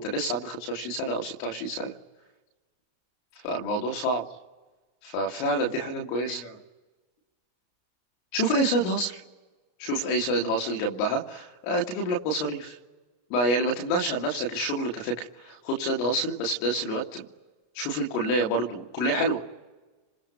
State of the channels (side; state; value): right; late; 33 ms